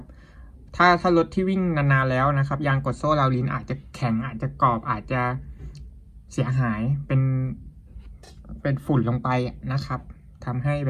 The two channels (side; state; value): both; identical; correlation 1.00